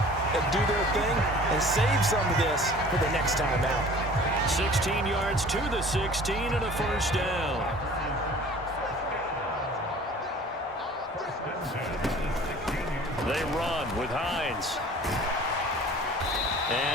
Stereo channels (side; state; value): both; normal; correlation 0.46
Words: and do their thing and save some of this for the next time out. 16 yards to the 16 and a 1st down. They run with Hines.